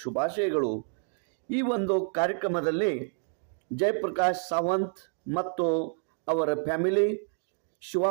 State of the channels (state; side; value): silent; left; 57 dB below the other